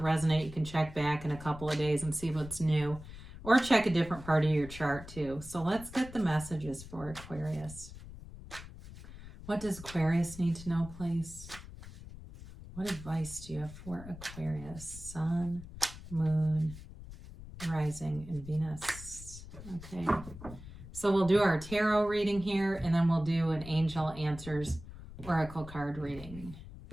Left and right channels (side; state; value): left; noise; rumble, 14 dB below the sound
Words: resonate, you can check back in a couple of days and see what's new. Or check a different part of your chart too. So let's get the messages for Aquarius. What does Aquarius need to know, please? What advice do you have for Aquarius, Sun, Moon, Rising, and Venus? Okay, so we'll do our tarot reading here, and then we'll do an Angel Answers Oracle card reading.